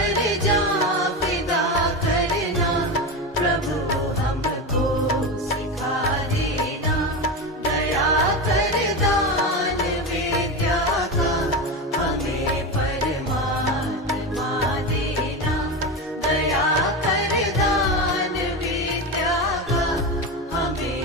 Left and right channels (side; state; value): both; normal; correlation 0.20